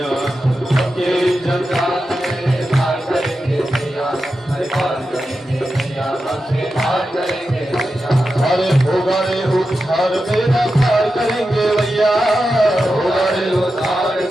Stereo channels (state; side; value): normal; both; correlation 0.90